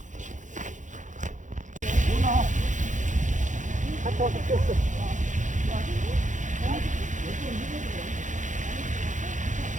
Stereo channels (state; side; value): late; left; 0.36 ms